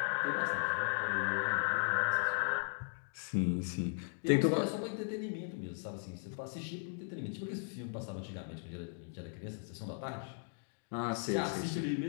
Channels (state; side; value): silent; right; 53 dB below the other